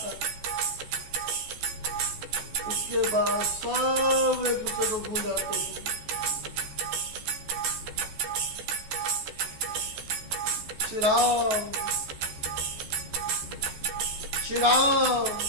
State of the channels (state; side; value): late; left; 14 ms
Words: उसके बाद सब एक दूसरे को भूल जाते हैं। श्री राम श्री राम